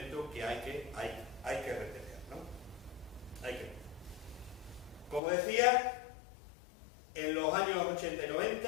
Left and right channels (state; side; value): drops out; right; at 5.2 s